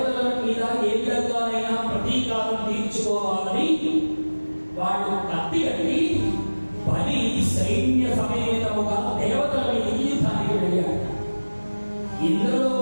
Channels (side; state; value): both; inverted; correlation -1.00